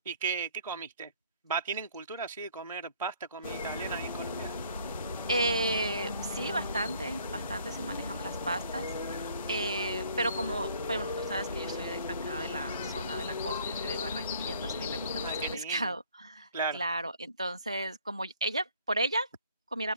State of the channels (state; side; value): inverted; both; correlation -0.59